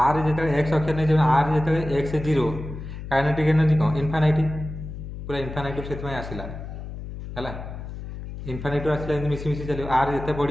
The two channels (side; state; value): left; noise; hum, 9 dB below the sound